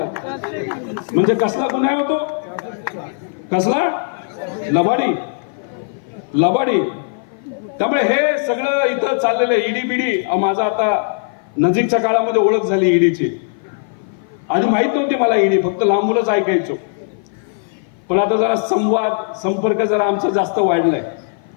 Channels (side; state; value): right; silent; 55 dB below the other